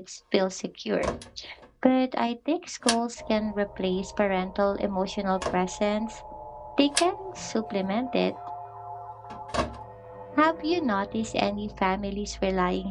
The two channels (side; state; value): both; identical; correlation 1.00